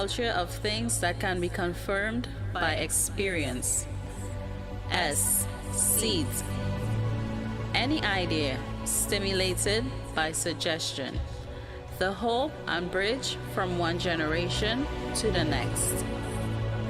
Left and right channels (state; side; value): identical; both; correlation 1.00